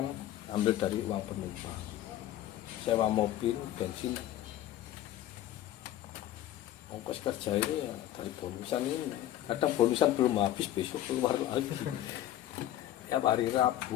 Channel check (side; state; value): right; quieter; 12.9 dB